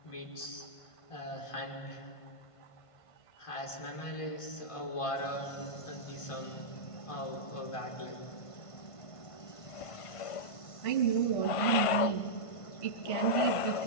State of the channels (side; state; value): right; late; 1.5 ms